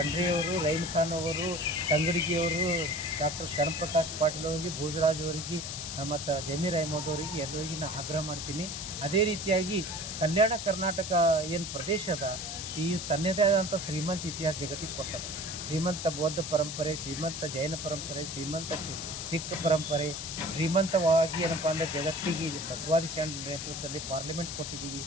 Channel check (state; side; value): noise; left; hiss, 6 dB below the sound